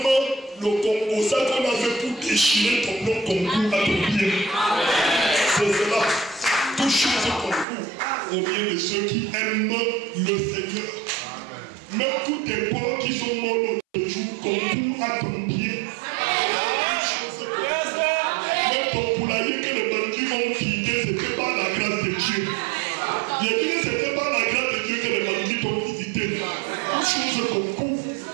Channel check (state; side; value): drops out; left; at 7.7 s